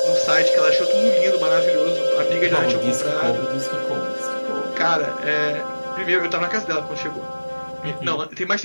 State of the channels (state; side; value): inverted; both; correlation -1.00